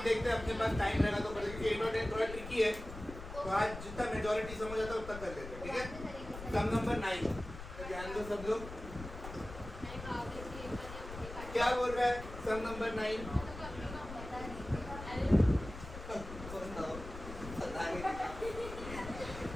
देखते हैं अपने पास टाइम रहेगा तो क्योंकि 8 और 10 थोड़ा ट्रिकी है तो आज जितना मेजॉरिटी समझ आता है उतना कर लेते हैं ठीक है सम नंबर 9 तो ध्यान दो सब लोग क्या बोल रहा है सम नंबर 9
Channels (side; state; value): left; noise; rumble, 11 dB below the sound